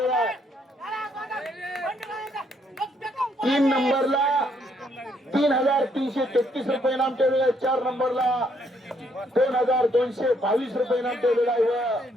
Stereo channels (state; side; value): normal; both; correlation 0.71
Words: आहे. 3 नंबरला 3,333 रुपये नाम ठेवलेला आहे. 4 नंबरला 2,222 रुपये नाम ठेवलेला आहे. व